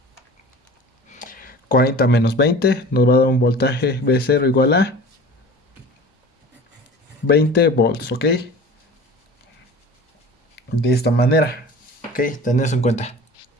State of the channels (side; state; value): both; normal; correlation 0.40